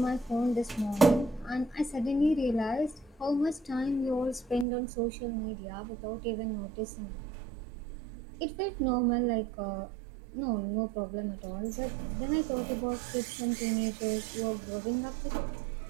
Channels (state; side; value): drops out; left; at 4.7 s